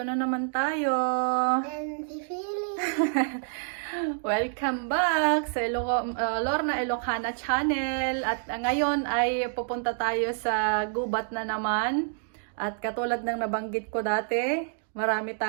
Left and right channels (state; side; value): silent; left; digital silence